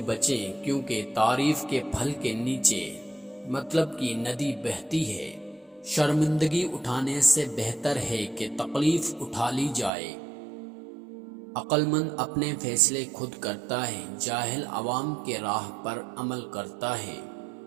بچیں، کیونکہ تعریف کے پھل کے نیچے مطلب کی ندی بہتی ہے۔ شرمندگی اٹھانے سے بہتر ہے کہ تکلیف اٹھا لی جائے۔ عقل مند اپنے فیصلے خود کرتا ہے، جاہل عوام کے راہ پر عمل کرتا ہے۔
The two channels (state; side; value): drops out; left; at 9.9 s